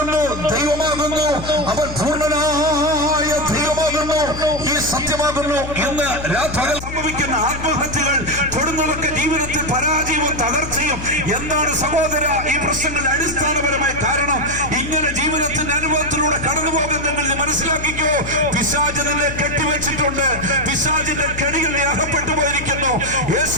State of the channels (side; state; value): left; noise; hum, 9 dB below the sound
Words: ദൈവമാകുന്നു. അവൻ പൂർണ്ണനായ ദൈവമാകുന്നു, ഈ സത്യമാകുന്നു. ഇന്ന് രാത്രി സംഭവിക്കുന്ന ആത്മഹത്യകൾ, കൊടുന്നവർക്ക് ജീവിതത്തിൽ പരാജയവും തകർച്ചയും എന്താണ് സഹോദര ഈ പ്രശ്നങ്ങളുടെ അടിസ്ഥാനപരമായ കാരണം? ഇങ്ങനെ ജീവിതത്തിന്റെ അനുഭവത്തിലൂടെ കടന്നു പോകുന്നെങ്കിൽ മനസ്സിലാക്കിക്കോ, പിശാച് നിന്നെ കെട്ടിവെച്ചിട്ടുണ്ട്. പിശാചിന്റെ കെണികളിൽ അകപ്പെട്ടു പോയിരിക്കുന്നു. യേശു